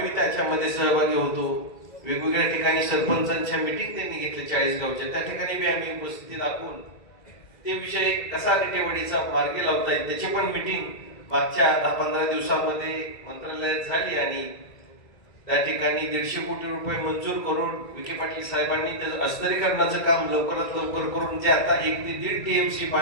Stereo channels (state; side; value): late; right; 2.0 ms